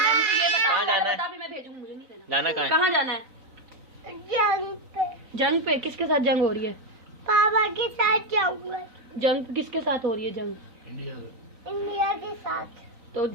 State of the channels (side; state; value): left; late; 3.9 ms